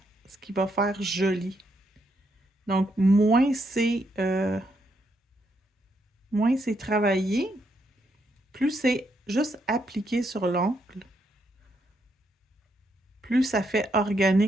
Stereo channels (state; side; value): normal; both; correlation 0.77